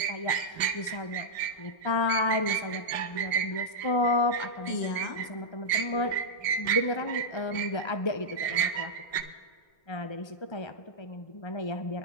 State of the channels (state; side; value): late; right; 1.3 ms